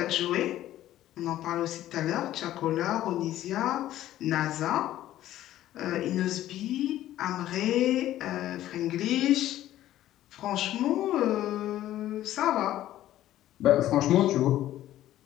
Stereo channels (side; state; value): right; quieter; 13.5 dB